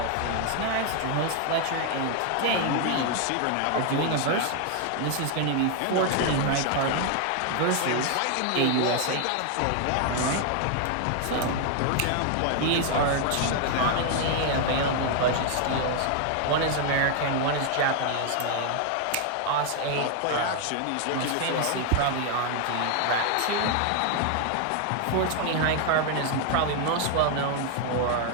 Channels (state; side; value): different; both; correlation 0.00